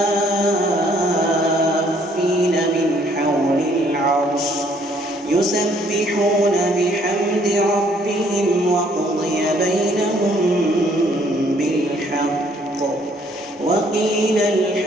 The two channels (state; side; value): normal; both; correlation 0.64